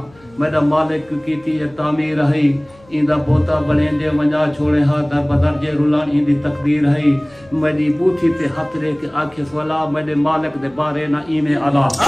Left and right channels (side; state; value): left; noise; hum, 28 dB below the sound